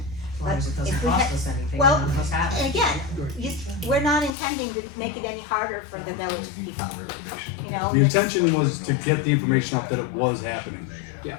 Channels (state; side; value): drops out; right; at 4.4 s